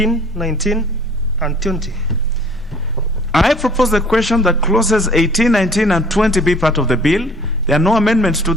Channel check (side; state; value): both; normal; correlation 0.52